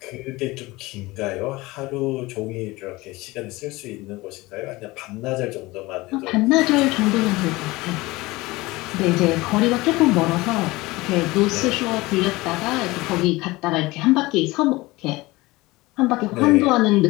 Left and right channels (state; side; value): quieter; right; 21.0 dB